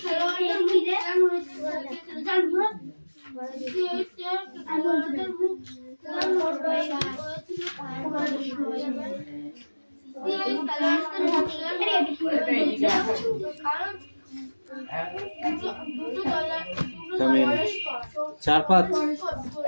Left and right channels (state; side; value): inverted; both; correlation -1.00